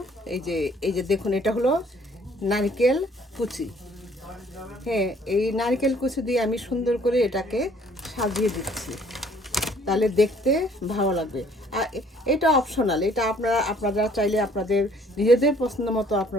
এই যে দেখুন, এটা হলো নারকেল কুচি। হ্যাঁ, এই নারকেল কুচি দিয়ে আমি সুন্দর করে এটাকে সাজিয়ে দিচ্ছি, তাহলে দেখতে ভালো লাগবে। আর এটা অপশনাল, এটা আপনারা চাইলে আপনাদের নিজেদের পছন্দ মতো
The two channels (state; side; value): normal; both; correlation 0.59